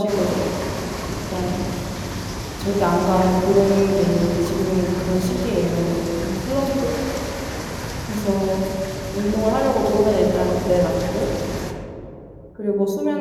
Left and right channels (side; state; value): both; identical; correlation 1.00